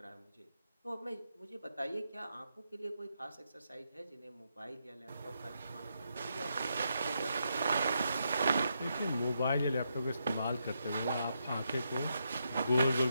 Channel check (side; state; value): both; inverted; correlation -0.81